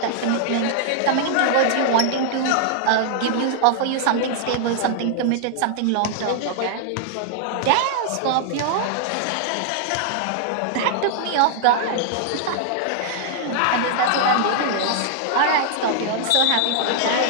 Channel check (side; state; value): both; different; correlation 0.00